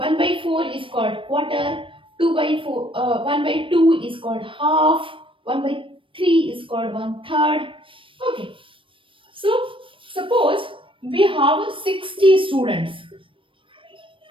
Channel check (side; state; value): left; late; 0.25 ms